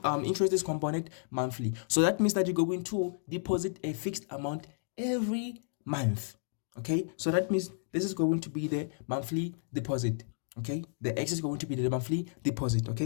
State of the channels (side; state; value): right; silent; digital silence